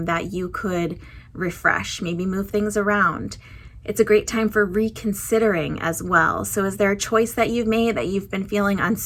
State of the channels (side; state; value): both; identical; correlation 1.00